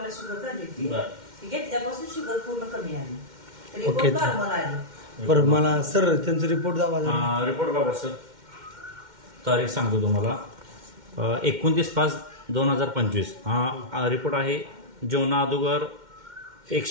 शुगर झाली होती. ती घेतल्यापासून शुगर पूर्ण कमी आली. तरी ओके. नॉर्मल आली. बरं मला सर त्यांचा रिपोर्ट दावा रिपोर्ट बघा सर. तारीख सांगतो तुम्हाला. 29/5/2025 हा रिपोर्ट आहे. जेवणा अगोदर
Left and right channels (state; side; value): late; left; 2.1 ms